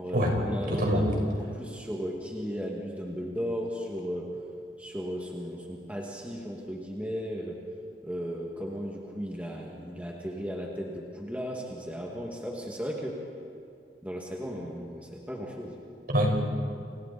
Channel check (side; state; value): both; normal; correlation 0.73